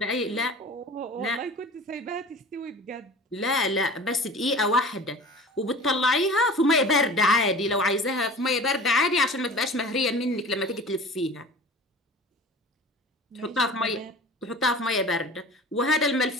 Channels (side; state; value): both; normal; correlation 0.39